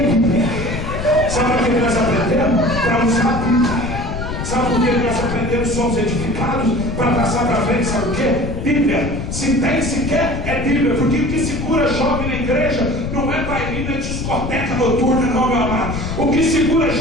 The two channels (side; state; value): left; noise; rumble, 5 dB below the sound